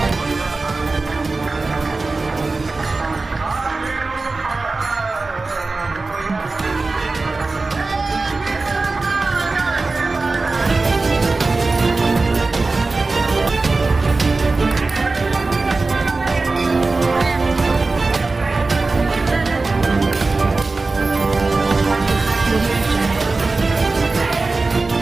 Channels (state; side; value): quieter; left; 3.6 dB